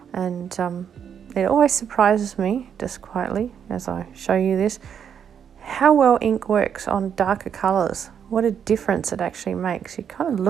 and it always surprises me, just quietly, as I show you this, how well ink works on darker colours. What a difference it actually makes. You kind of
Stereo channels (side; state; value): left; quieter; 8.1 dB